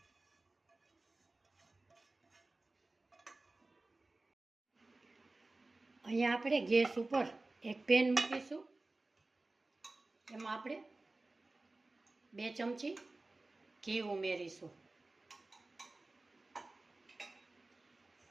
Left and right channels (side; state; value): left; quieter; 3.1 dB